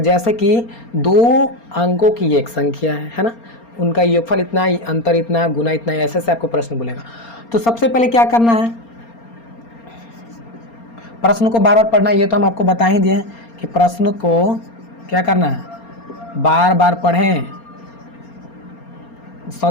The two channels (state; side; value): late; right; 4.3 ms